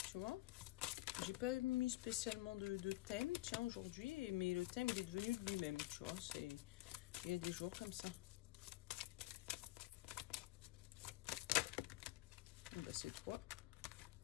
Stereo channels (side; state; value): right; quieter; 18.0 dB